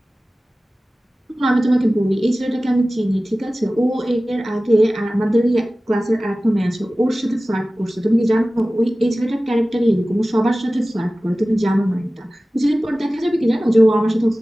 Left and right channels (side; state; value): both; normal; correlation 0.97